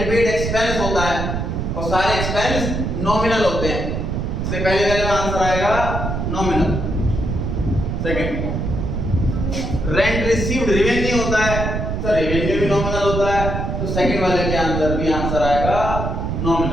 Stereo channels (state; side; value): noise; right; rumble, 2 dB below the sound